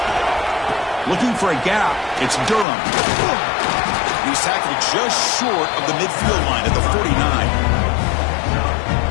Looking for a gap. It's Durham. He's tackled just short of the midfield line at the 49.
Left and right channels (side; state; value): right; drops out; at 2.7 s